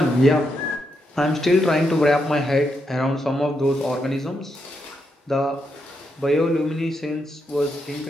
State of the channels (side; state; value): both; normal; correlation 0.82